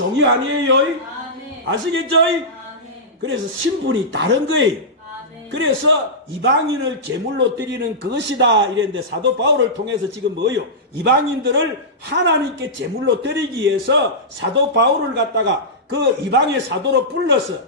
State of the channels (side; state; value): both; normal; correlation -0.14